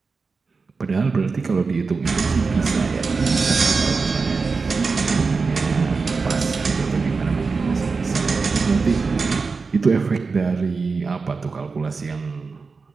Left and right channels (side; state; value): left; quieter; 4.5 dB